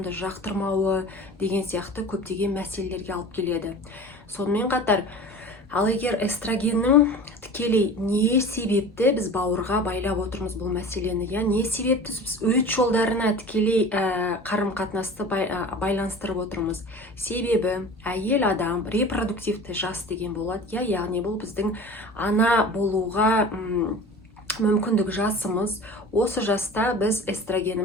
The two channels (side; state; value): both; normal; correlation 0.38